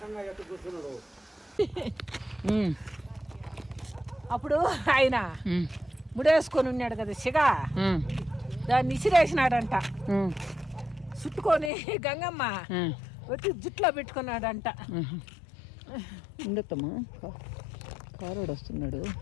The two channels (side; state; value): right; drops out; at 11.7 s